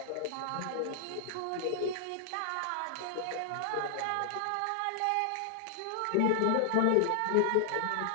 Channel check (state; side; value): different; both; correlation 0.00